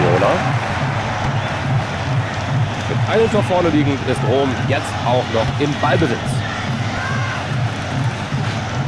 Mit einem Tor vorne liegend ist Rom jetzt auch noch im Ballbesitz.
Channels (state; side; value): identical; both; correlation 1.00